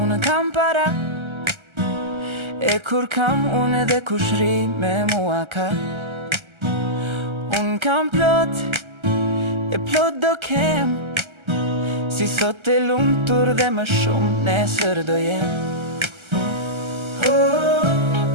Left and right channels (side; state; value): left; late; 1.3 ms